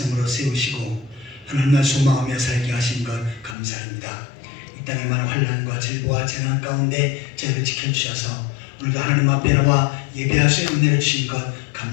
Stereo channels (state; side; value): drops out; right; at 3.6 s